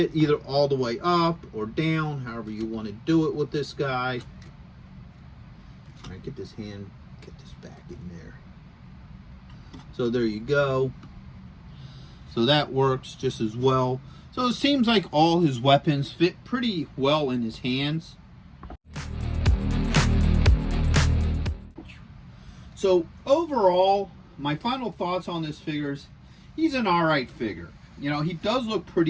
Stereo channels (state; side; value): identical; both; correlation 1.00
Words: either all the way up or down, however you want to do it with this guy. All right, get this back in there. So there you go. So that works just as well. So it seems like all his weapons fit pretty well in his hands. So overall, my final thoughts on this figure is he's an alright figure. You know, he does look